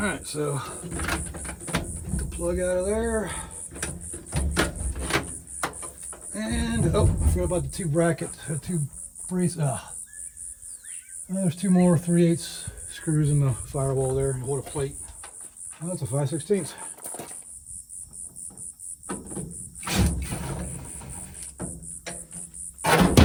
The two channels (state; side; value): identical; both; correlation 1.00